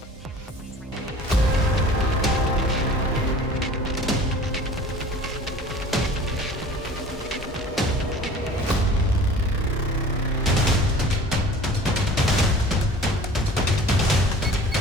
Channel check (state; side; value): normal; both; correlation 0.44